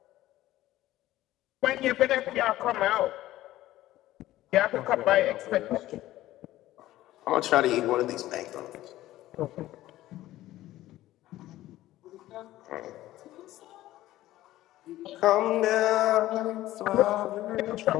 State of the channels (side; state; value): right; quieter; 15.3 dB